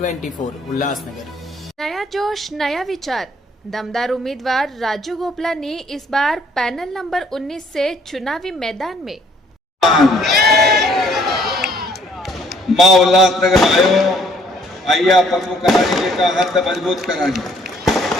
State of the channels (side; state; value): both; normal; correlation 0.62